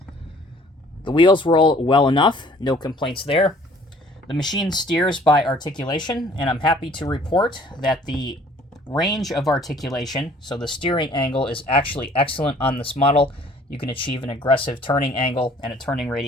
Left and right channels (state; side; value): normal; both; correlation 0.55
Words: The wheels roll well enough, no complaints there. The machine steers by articulation, and I'm happy to report that the range of articulation, so the steering angle, is actually excellent on this model. You can achieve an aggressive turning angle and a turning